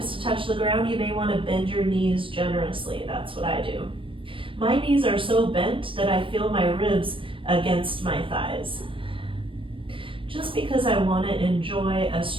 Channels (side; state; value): left; late; 0.25 ms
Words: to touch the ground, you may wanna bend your knees generously. That's what I do. My knees are so bent that I feel my ribs against my thighs. Just because I want to enjoy a